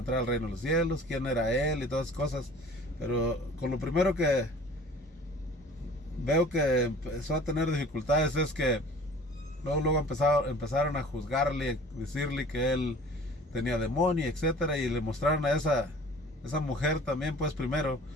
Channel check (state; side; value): normal; both; correlation 0.46